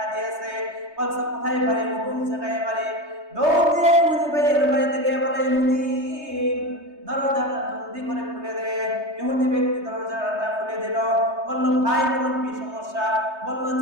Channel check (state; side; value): late; left; 3.3 ms